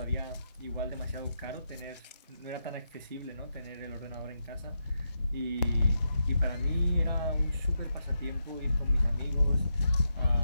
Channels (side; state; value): both; inverted; correlation -0.84